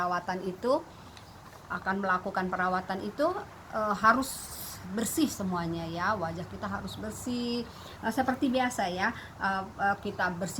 itu harus bersih semuanya ya. Wajah kita harus bersih seperti biasa ya. Kita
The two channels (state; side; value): identical; both; correlation 1.00